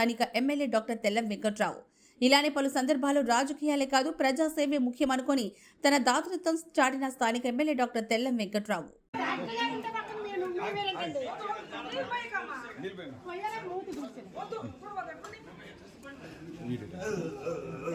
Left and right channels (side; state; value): both; identical; correlation 1.00